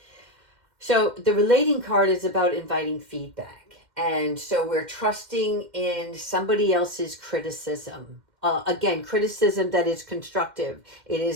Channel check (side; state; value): left; late; 2.1 ms